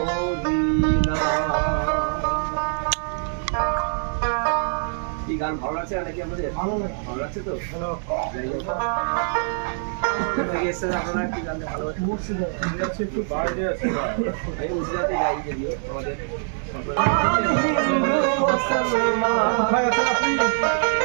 এই গান ভালো লাগছে নাকি আপনাদের? ভালো লাগছে তো? যাই হোক, আপনারা কি গান ভালো লাগছে? একটু বাইরে আছে, এই উজরাতে গাই যদিও আমাদের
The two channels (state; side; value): silent; left; 63 dB below the other